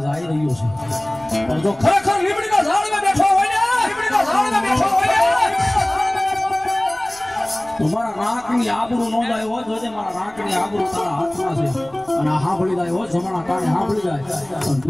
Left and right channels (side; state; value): left; noise; rumble, 27 dB below the sound